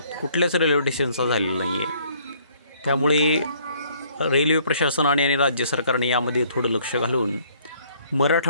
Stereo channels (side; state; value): both; inverted; correlation -0.62